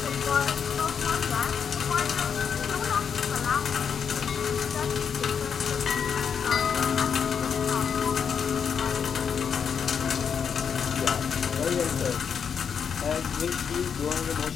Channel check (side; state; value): right; quieter; 7.0 dB